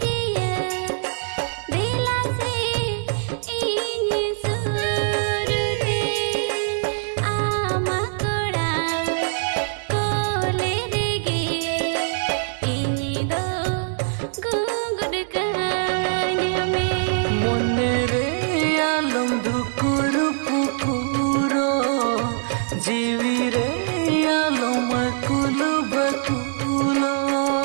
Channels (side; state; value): left; silent; 64 dB below the other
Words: जीवी रे आलो मकुलो बकुलो